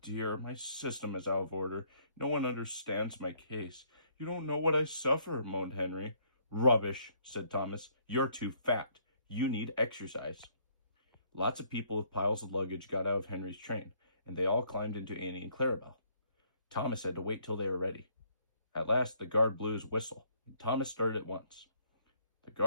my system is out of order. No one understands my case. You don't know what I suffer," moaned Henry. "Rubbish," said Thomas. "You're too fat. You need exercise." Lots of people with piles of luggage got out of Henry's train, and they all climbed into Annie and Clarabelle. Thomas had to wait till they were ready. At last, the guard blew his whistle, and Thomas started at once. The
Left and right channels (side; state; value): both; inverted; correlation -0.66